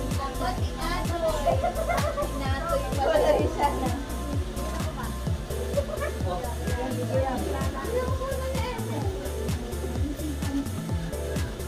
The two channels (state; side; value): identical; both; correlation 1.00